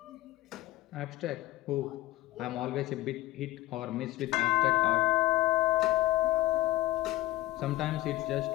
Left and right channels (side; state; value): right; quieter; 17.0 dB